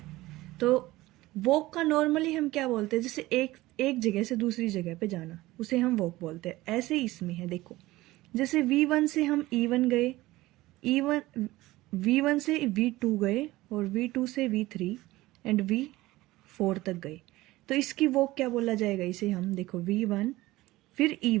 तो वॉक का नॉर्मली हम क्या बोलते हैं, जैसे एक जगह से दूसरी जगह पे जाना, उसे हम वॉक बोलते हैं। ऐसे ही इसमें है, देखो जैसे v1 से हम e1 गए, v1 से v2 गए और v2 से v3 एंड v4 तक गए। तो इसकी वॉक क्या बोला जाएगा, इसे हम देखो v1 फिर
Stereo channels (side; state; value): left; quieter; 18.3 dB